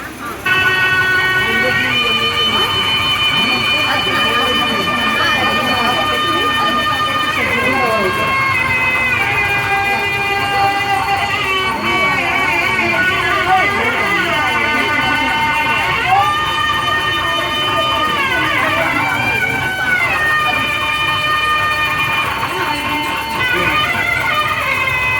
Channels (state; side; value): identical; both; correlation 1.00